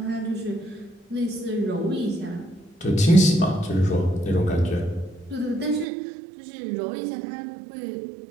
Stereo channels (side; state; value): left; drops out; at 5.9 s